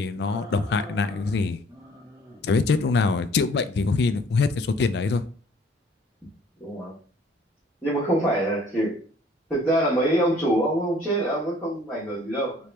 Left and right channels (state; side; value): normal; both; correlation 0.57